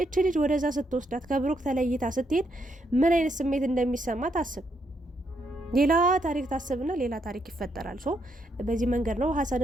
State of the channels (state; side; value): normal; both; correlation 0.77